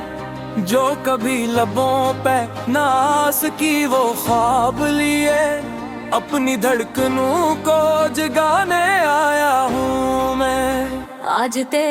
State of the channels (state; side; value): identical; both; correlation 1.00